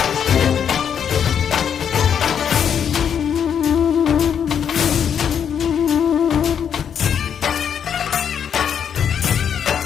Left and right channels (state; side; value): quieter; right; 8.1 dB